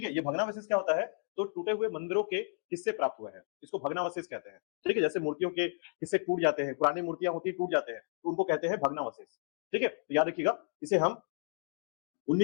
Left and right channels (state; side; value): silent; right; digital silence